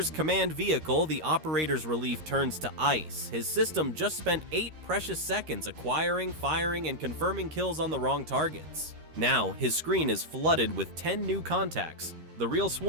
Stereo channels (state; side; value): late; left; 13 ms